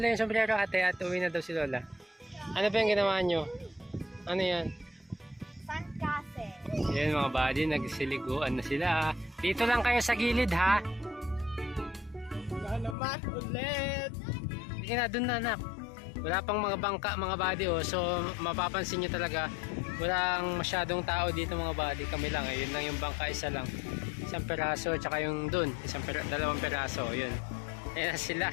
yung sombrero ate at uwi na daw si Lola. Ano ba yung ginawa nyo? Ano yan? Sandcastle. Yan mga buddy, nagsiliguan na sila. Dito lang kayo sa gilid ha. Naman ulit. Sige na, dun na anak. Wala pang mga bangka mga buddy oh. So mapapansin nyo talaga walang masyadong tao dito mga buddy. Kami lang eh. Yun lang yung bangka, isa lang. Isang peraso tsaka yung dun. Dalawang peraso. Yun. Ayan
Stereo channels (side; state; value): right; drops out; at 13.0 s